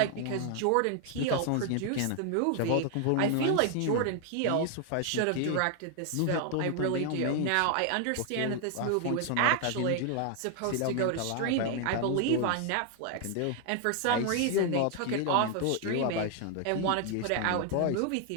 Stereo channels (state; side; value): different; both; correlation 0.00